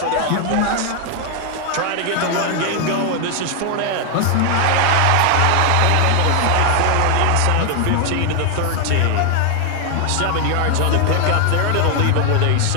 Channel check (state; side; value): different; both; correlation 0.00